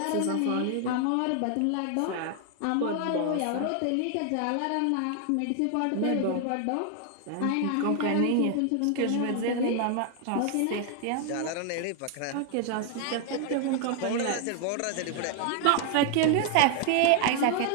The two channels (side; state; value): both; different; correlation 0.00